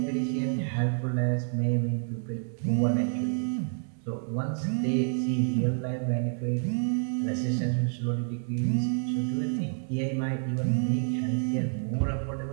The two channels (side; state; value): left; silent; 59 dB below the other